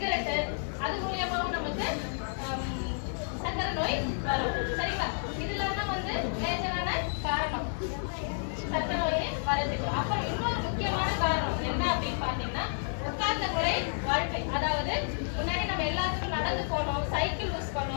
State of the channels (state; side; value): silent; right; digital silence